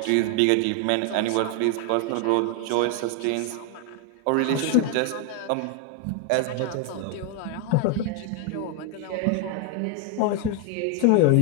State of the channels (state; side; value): different; both; correlation 0.00